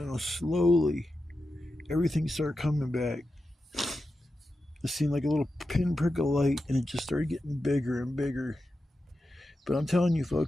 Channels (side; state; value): both; normal; correlation 0.91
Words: know, slowly everything started coming back. It seemed like a little pinprick of light, and it just started getting bigger and bigger. But I'm telling you,